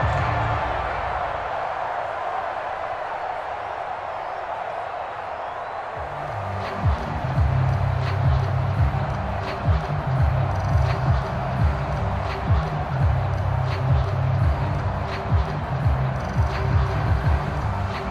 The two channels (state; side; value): identical; both; correlation 1.00